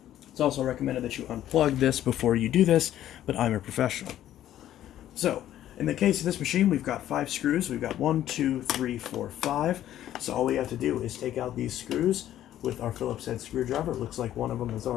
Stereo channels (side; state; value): right; quieter; 12.2 dB